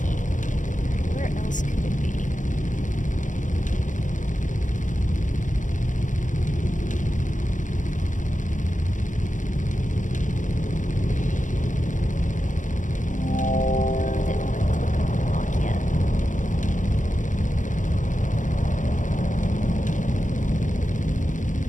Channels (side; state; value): right; late; 0.37 ms